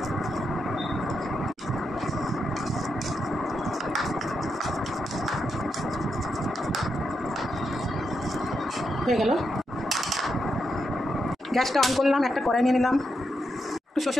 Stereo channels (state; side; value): normal; both; correlation 0.83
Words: হয়ে গেল। গ্যাসটা অন করলাম, একটা কড়াই নিয়ে নিলাম, একটু